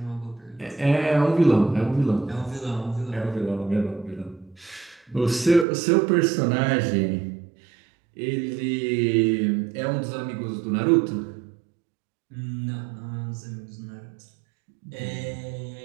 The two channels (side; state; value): left; drops out; at 5.7 s